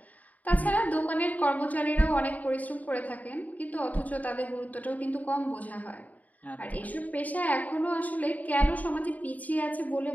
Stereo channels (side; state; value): right; late; 0.075 ms